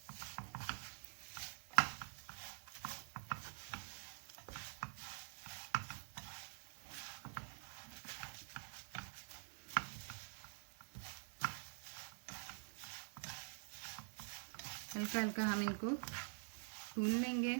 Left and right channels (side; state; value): left; silent; digital silence